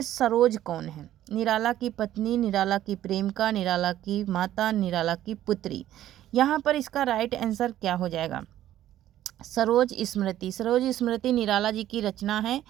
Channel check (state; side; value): quieter; left; 12.8 dB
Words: सरोज कौन है? निराला की पत्नी, निराला की प्रेमिका, निराला की माता, निराला की पुत्री। यहाँ पर इसका राइट आंसर क्या हो जाएगा? सरोज स्मृति निराला जी की रचना है।